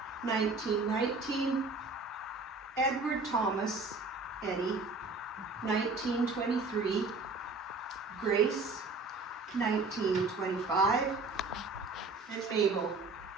1919, Edward Thomas, Eddie, 1923, Grace, 1925, and Mabel,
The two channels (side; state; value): left; quieter; 3.6 dB